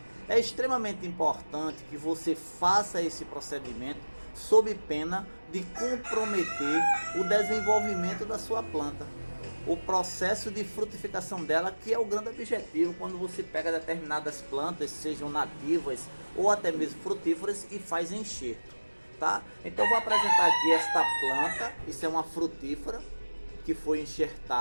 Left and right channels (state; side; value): inverted; both; correlation -1.00